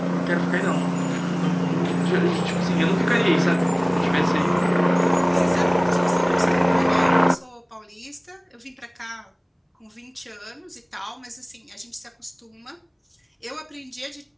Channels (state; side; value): identical; both; correlation 1.00